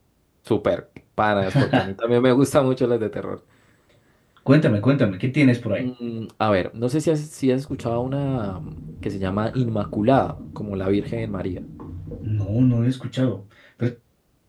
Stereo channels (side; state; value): both; identical; correlation 1.00